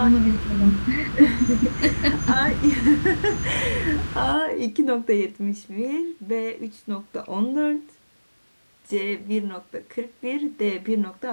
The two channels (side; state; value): both; inverted; correlation -1.00